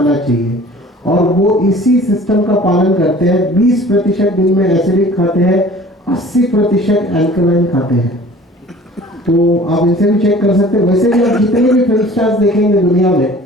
चाहिए, और वो इसी सिस्टम का पालन करते हैं। 20% दिन में एसिडिक खाते हैं, 80% अल्कलाइन खाते हैं। तो आप इनसे भी चेक कर सकते हैं। वैसे भी आप जितने भी फिल्म स्टार्स देखेंगे दुनिया में,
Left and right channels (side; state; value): both; normal; correlation 0.47